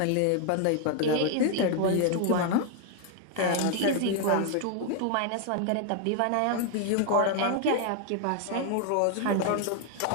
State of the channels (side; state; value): both; different; correlation 0.00